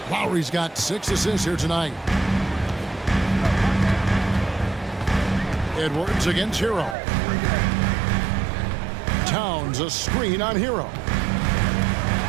Lowry's got 6 assists here tonight. Edwards against Hero. Towns a screen on Hero.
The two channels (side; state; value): left; drops out; at 7.0 s